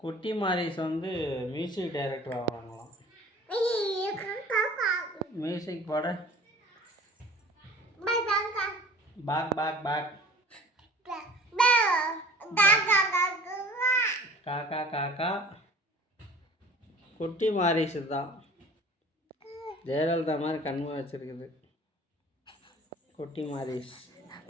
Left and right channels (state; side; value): normal; both; correlation 0.46